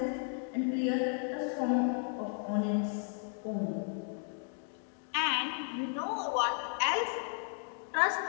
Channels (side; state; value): right; silent; 55 dB below the other